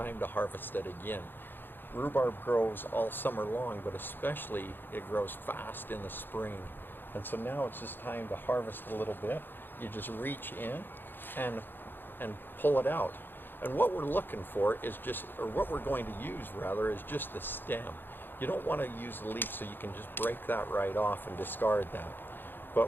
to harvest it again. Rhubarb grows all summer long, but especially it grows fast in the spring. And so now it's just time to harvest a little bit. You just reach in and pull it out. And what we're looking for is just, or what we're going to use rather, is just the stem. You don't want to use the leaf, so you can just break that right off and discard that.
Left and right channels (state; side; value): late; right; 0.097 ms